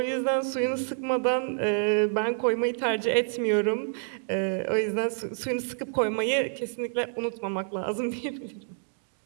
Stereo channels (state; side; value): silent; left; digital silence